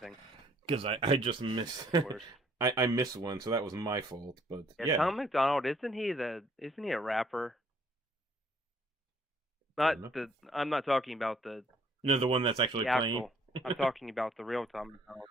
Because I just missed. I missed one, so that was my fault. But yeah, Tom McDonald, isn't he a rapper? I'm not talking about the the one that's actually playing. I'm talking about the real Tom McDonald.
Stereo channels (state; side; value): normal; both; correlation 0.63